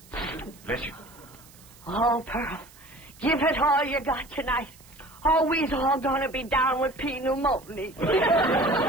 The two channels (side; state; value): right; noise; hiss, 24 dB below the sound